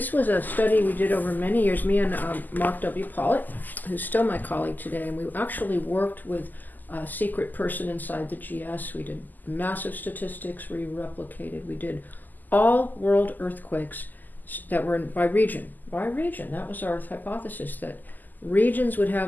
was a study we did over many years. Me and Mark W. Pollitt, who's still my colleague today, and we actually worked with a secret person inside the GS. We did massive statistics. We replicated. We did all world earthquakes that were by region. By region. That was our hypothesis, that regions would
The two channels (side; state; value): right; late; 0.085 ms